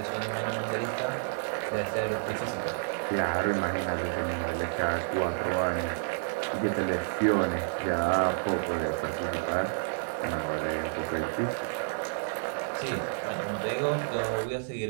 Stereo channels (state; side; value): silent; left; digital silence